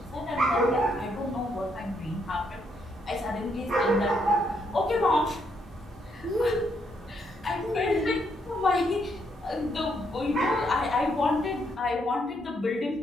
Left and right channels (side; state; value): both; normal; correlation 0.75